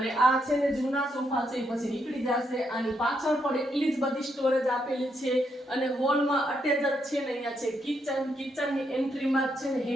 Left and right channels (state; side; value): normal; both; correlation 0.78